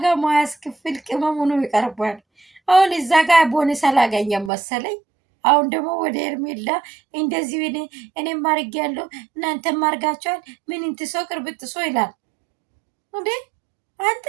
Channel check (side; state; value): left; drops out; at 4.5 s